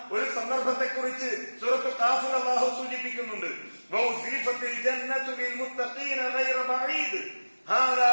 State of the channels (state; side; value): inverted; both; correlation -1.00